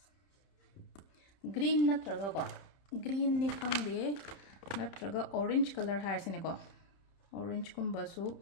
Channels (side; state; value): right; late; 30 ms